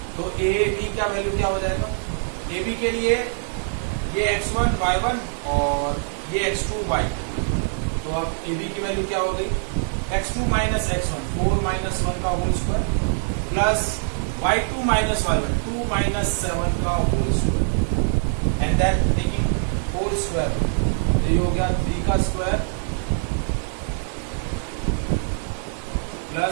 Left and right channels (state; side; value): silent; left; 63 dB below the other